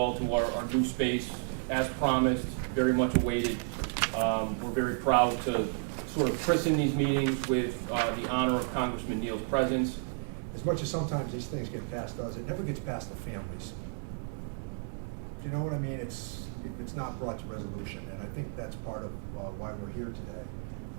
to our new space. As promised, very much awaited. We're very proud to sort of christen these meetings with the honor of Congressman Neal's presence. As much as sometimes these things get past us, it never gets past the families. Do you know what I mean? It's not brought to resolution, and I think that's part of why we're here today.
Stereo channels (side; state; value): left; silent; 56 dB below the other